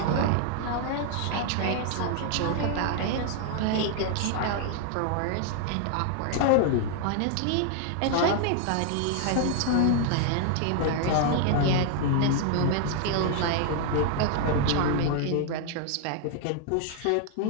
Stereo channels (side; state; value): both; different; correlation 0.00